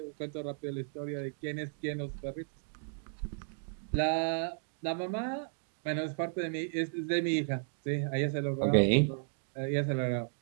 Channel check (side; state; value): left; silent; digital silence